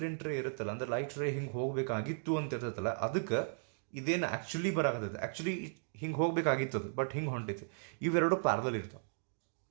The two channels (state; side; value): silent; left; digital silence